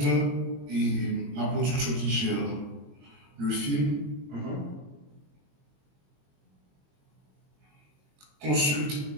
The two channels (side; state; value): left; late; 22 ms